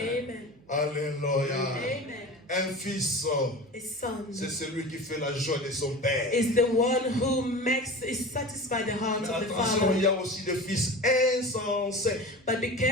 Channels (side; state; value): right; noise; hum, 28 dB below the sound